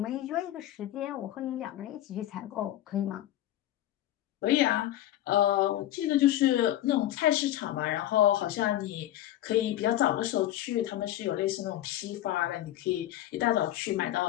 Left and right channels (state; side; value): quieter; right; 13.4 dB